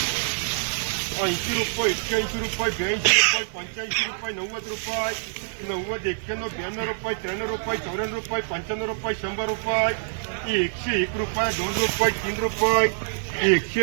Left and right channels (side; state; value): left; silent; digital silence